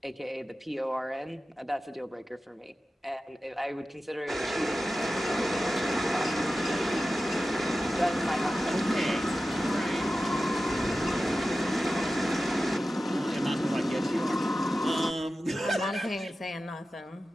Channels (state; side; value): normal; both; correlation 0.94